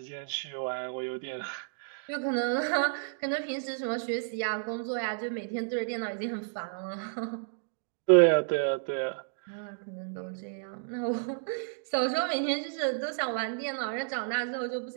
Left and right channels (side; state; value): left; silent; digital silence